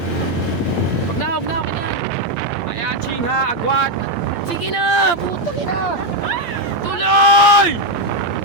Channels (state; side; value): late; right; 8.7 ms